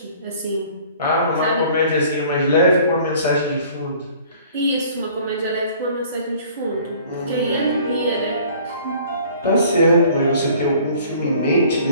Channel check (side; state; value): both; inverted; correlation -0.52